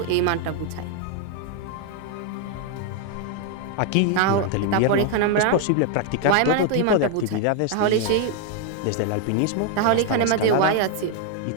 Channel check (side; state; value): both; different; correlation 0.00